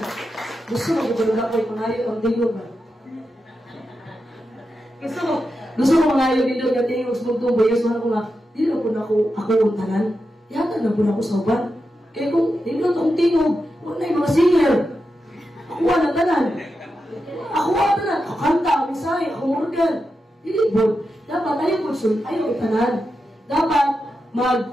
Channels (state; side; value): normal; both; correlation 0.89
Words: Gusto mo kung ako'y pangayo ang tiyok ba? Gusto mo pangayo dito ang tiyok sa bugtong bayas. Mahal ko nga, hindi na po na ako untanan. Yatag na po na ako sa uban. Kaya kung hindi na itong tiyok, wala yung mga singer. Ako na tanan. Ako tanan. Ako kanta, ako misay, ako organ. Hindi po. Dapat ayaw itanan. Dapat